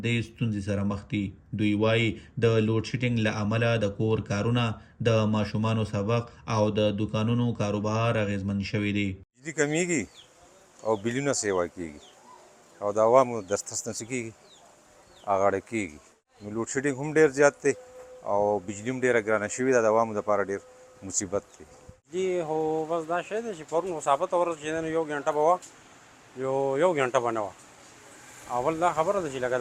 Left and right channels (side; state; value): both; identical; correlation 1.00